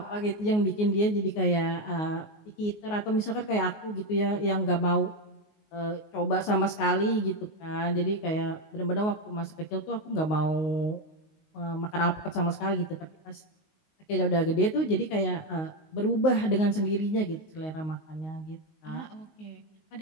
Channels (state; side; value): late; right; 19 ms